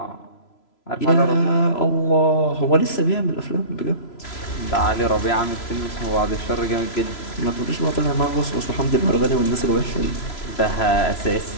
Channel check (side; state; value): right; late; 3.0 ms